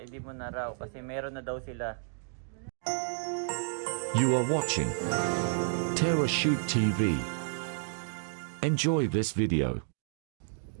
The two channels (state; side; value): silent; left; 57 dB below the other